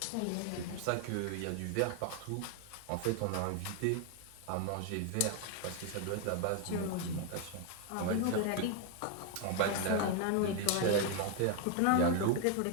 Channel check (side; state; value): both; different; correlation 0.01